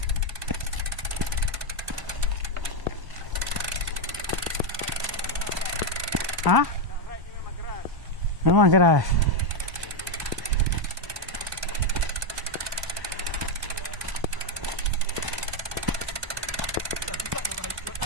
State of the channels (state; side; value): late; left; 1.0 ms